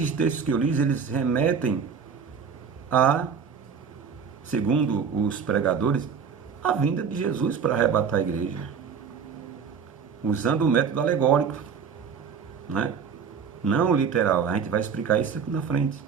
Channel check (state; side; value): quieter; left; 6.5 dB